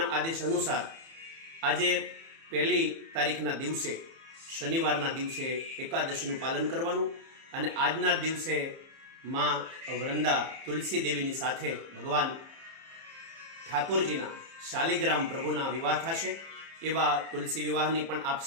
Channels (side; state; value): left; late; 30 ms